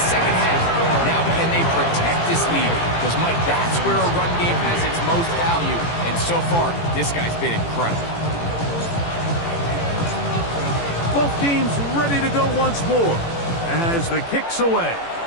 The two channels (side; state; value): right; late; 18 ms